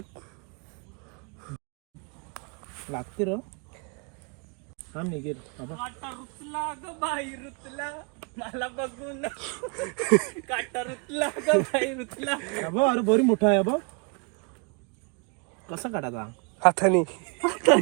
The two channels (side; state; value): left; quieter; 33.2 dB